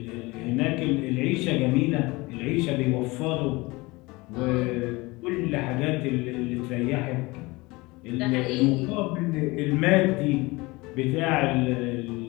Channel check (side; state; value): right; quieter; 23.1 dB